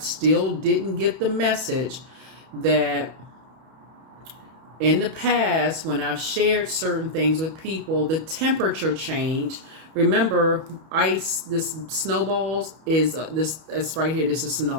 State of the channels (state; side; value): late; left; 31 ms